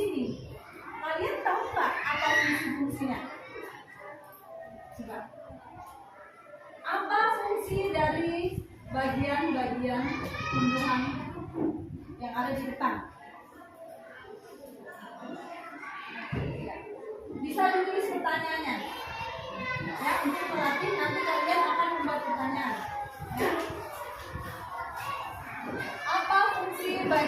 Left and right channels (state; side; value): identical; both; correlation 1.00